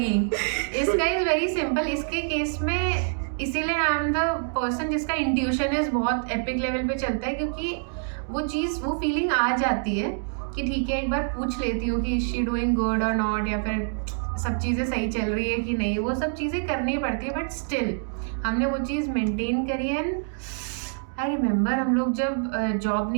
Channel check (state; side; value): silent; left; digital silence